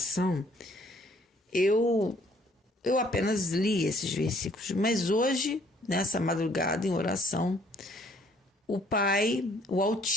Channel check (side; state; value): both; normal; correlation 0.62